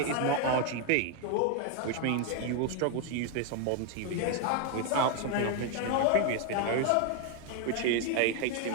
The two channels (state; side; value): different; both; correlation 0.01